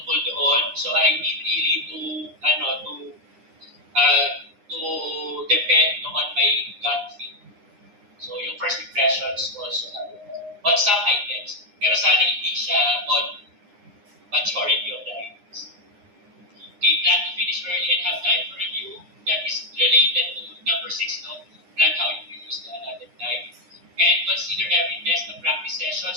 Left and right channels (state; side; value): late; left; 9.8 ms